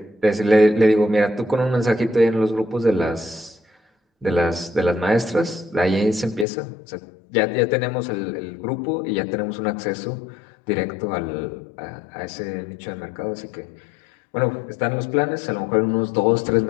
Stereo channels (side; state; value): right; drops out; at 6.5 s